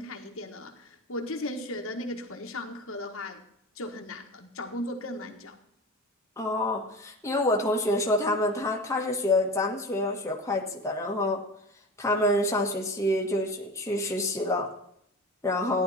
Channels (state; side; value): normal; both; correlation 0.31